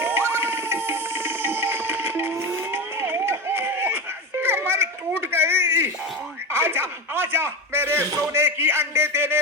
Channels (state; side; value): normal; both; correlation 0.21